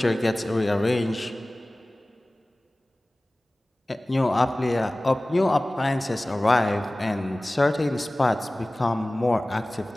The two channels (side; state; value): both; normal; correlation 0.98